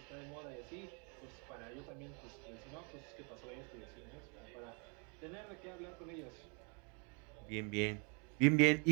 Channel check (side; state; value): left; quieter; 35.6 dB